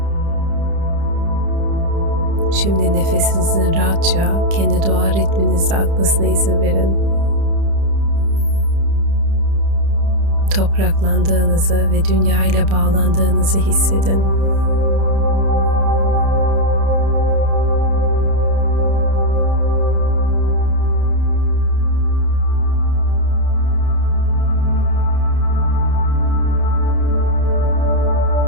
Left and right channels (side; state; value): left; late; 30 ms